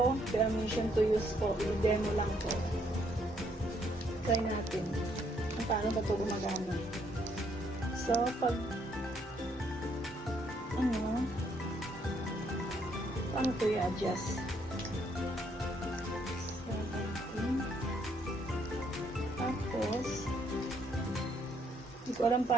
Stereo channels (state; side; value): normal; both; correlation 0.70